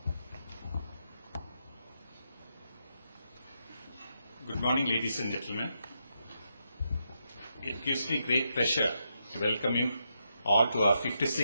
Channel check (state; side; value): inverted; both; correlation -0.82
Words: Good morning, ladies and gentlemen. It gives me great pleasure to welcome you all to our